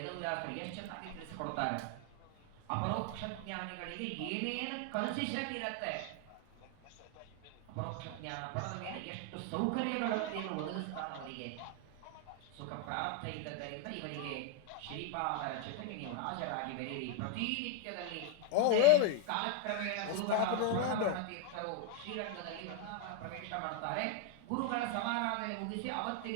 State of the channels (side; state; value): both; different; correlation 0.00